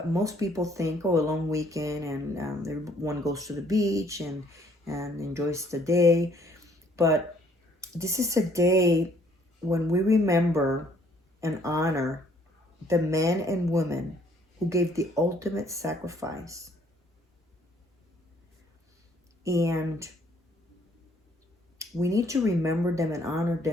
Most people think, oh, a long weekend, and everyone goes to the beach and enjoys the day. But this is a day when we remember and honor the men and women who gave the ultimate sacrifice And we need to remember them and honor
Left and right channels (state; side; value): normal; both; correlation 0.63